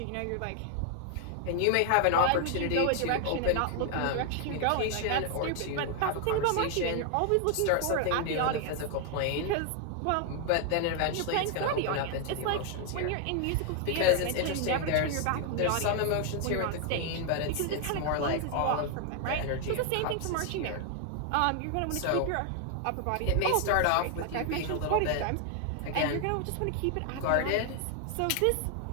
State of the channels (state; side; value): different; both; correlation 0.00